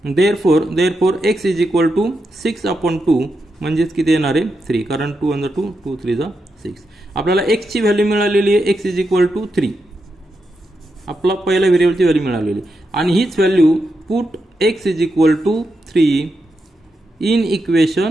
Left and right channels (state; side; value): normal; both; correlation 0.85